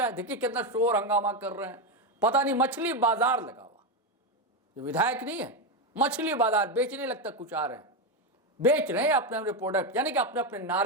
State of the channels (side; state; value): both; normal; correlation 0.10